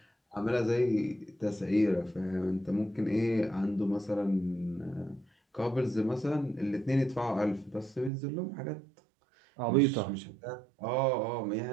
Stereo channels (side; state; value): left; drops out; at 8.1 s